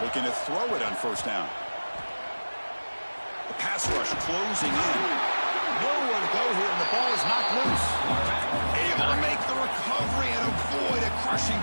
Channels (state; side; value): inverted; both; correlation -1.00